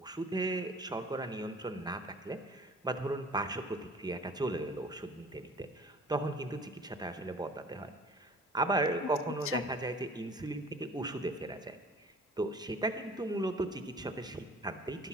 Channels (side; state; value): both; normal; correlation 0.48